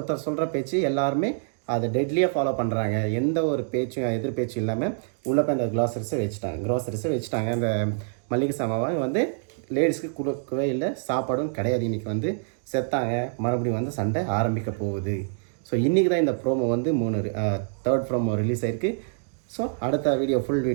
சொல்கிற பேச்சு எல்லாருமே அதை டெட்லியாக ஃபாலோ பண்ணுறாங்க. எந்த ஒரு பேச்சும் எதிர் பேச்சும் இல்லாமல் உள்ளே போய் அந்த க்ராசரிஸை வச்சுட்டாங்க. அந்த மல்லிகை சாமாவை வந்து லேடிஸ்க்கு கொடுக்கவே இல்லை, சாப்பாடும் கிடையாது. இன்றைக்கி வந்து செத்தாங்க, மறுபடியும் வந்து சண்டை ஆரம்பிக்க போகுது. ஸோ இன்றைக்கி தான் இந்த ப்ரோமோ வந்து 3 ப்ரோமோ ரிலீஸ் ஆகிருக்கு. ஸோ அடுத்த வீடியோ ஃபுல்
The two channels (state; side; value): silent; left; digital silence